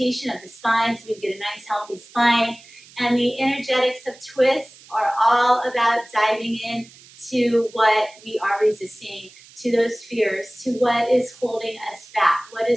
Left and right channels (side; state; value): right; noise; hiss, 23 dB below the sound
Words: of the spine so we get a nice healthy spine. And the energetics of twists are all about diving in to what we are resisting, to those fears, to what is holding us back, what